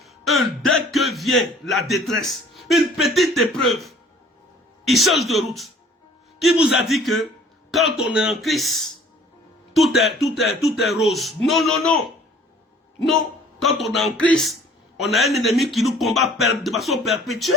dès que vient la détresse, une petite épreuve, ils changent de route. Qui vous a dit que quand on est en Christ, tout est rose? Non, non, non. Non, quand on est en Christ, on a un ennemi qui nous combat de façon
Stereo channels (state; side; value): normal; both; correlation 0.53